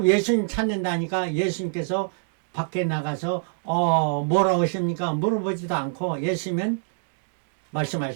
예수님 찾는다니까 예수님께서 밖에 나가서 뭐라 오십니까 물어보지도 않고 예수님은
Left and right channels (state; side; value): silent; left; digital silence